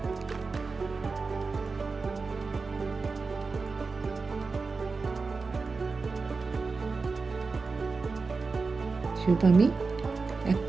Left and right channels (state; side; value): quieter; left; 4.3 dB